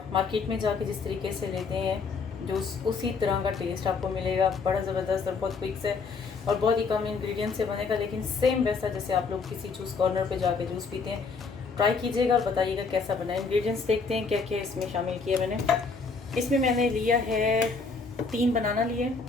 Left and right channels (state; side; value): quieter; right; 4.6 dB